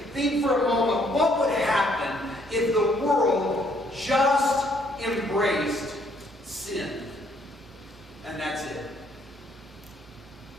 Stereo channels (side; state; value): both; normal; correlation 0.67